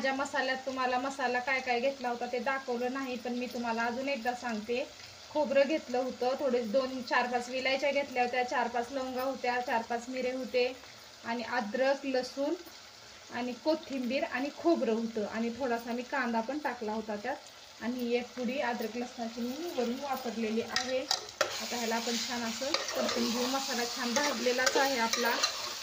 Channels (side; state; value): both; identical; correlation 1.00